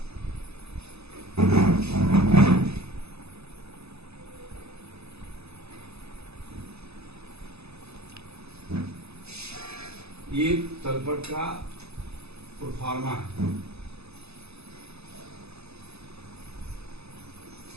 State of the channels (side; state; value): left; late; 0.79 ms